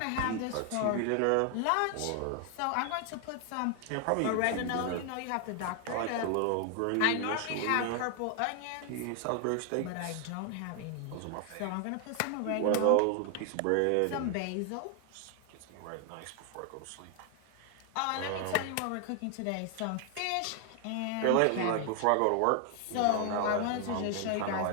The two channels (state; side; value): different; both; correlation 0.00